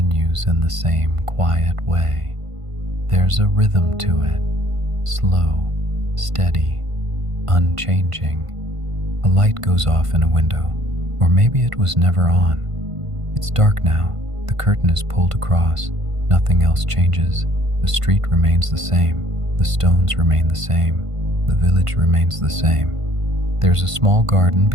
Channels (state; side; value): late; left; 1.5 ms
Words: in the same quiet way. There's a rhythm to it, slow, steady, unchanging. A light goes off in a window, or maybe it was never on. It's dark now. The curtain is pulled across. Nothing else changes. The street remains the same. The stones remain the same. The village remains the same. There's a small garden